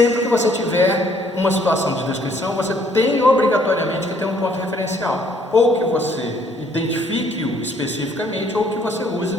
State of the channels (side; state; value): both; normal; correlation 0.64